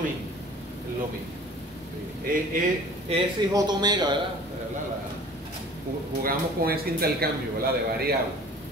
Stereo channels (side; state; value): both; normal; correlation 0.46